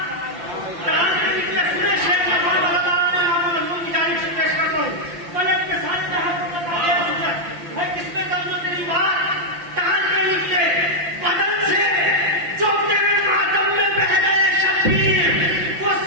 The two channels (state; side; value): late; left; 5.8 ms